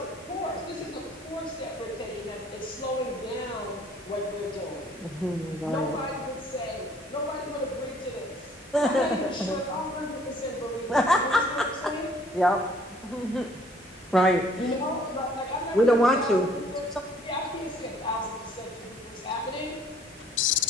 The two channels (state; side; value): normal; both; correlation 0.58